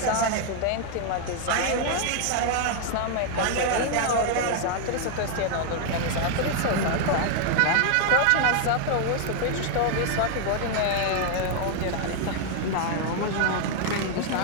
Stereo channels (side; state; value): both; different; correlation 0.00